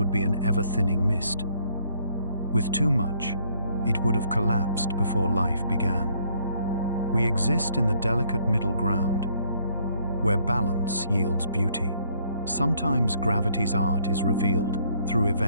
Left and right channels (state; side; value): inverted; both; correlation -0.66